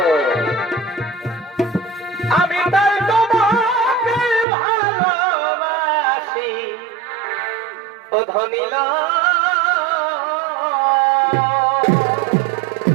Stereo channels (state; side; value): drops out; left; at 4.5 s